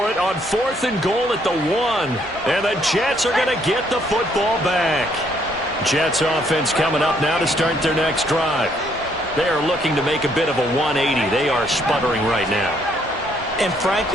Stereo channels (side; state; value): right; noise; hum, 25 dB below the sound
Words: it on 4th and goal at the 1. And the Jets are going to get the football back. Jets offense coming up now to start their next drive. They are looking to make a bit of a 180. They are sputtering right now. And